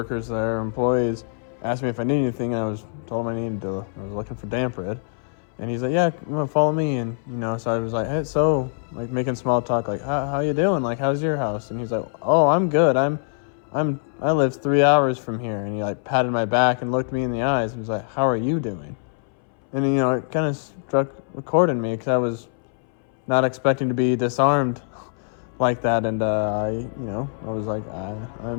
there, employees, asked me if I needed anything, and I told him I was looking for damp rid. And he's like, yeah, you want to follow me? And, so I was like, hey, so, like, making small talk, like, how you doing? Like, how's your house? And he's like, oh, I'm good. I'm I live 3 hours from here. And he like patted my back and looked me in the eyes and was like, how are you doing? And you know, it kind of struck a chord in me because I was not expecting to be disarmed like that. And I was like,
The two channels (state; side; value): silent; right; 62 dB below the other